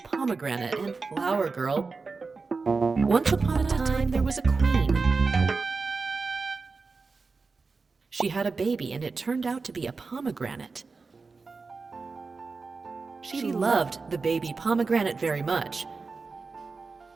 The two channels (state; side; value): quieter; left; 4.3 dB